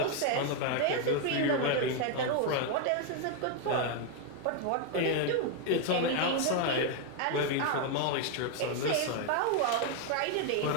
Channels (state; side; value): different; both; correlation 0.01